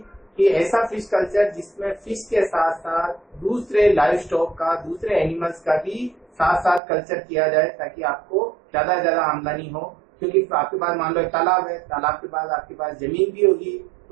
कि ऐसा फिश कल्चर जिसमें फिश के साथ साथ दूसरे लाइव स्टॉक का, दूसरे एनिमल्स का भी साथ साथ कल्चर किया जाए, ताकि आपको ज्यादा से ज्यादा आमदनी हो। क्योंकि आपके पास मान लो एक तालाब है, तालाब के पास आपके पास जमीन भी होगी,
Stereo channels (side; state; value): left; drops out; at 6.8 s